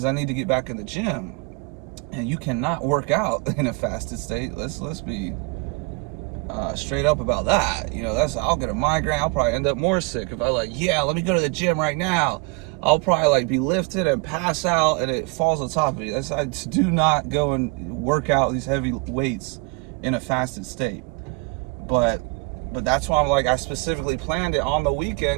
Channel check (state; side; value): quieter; left; 30.0 dB